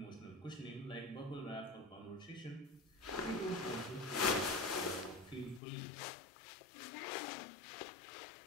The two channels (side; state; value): right; drops out; at 5.6 s